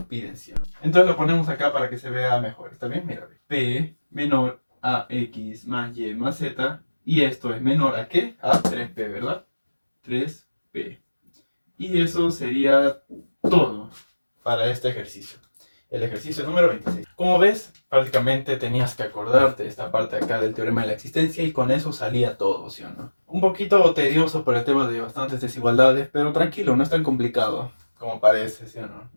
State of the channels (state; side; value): inverted; both; correlation -1.00